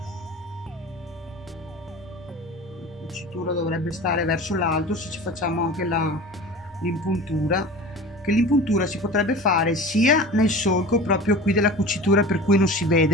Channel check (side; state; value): both; normal; correlation 0.36